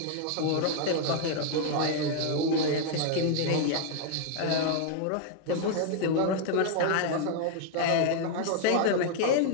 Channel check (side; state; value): both; different; correlation 0.00